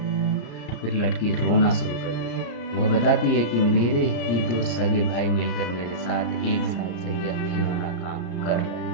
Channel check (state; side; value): late; right; 34 ms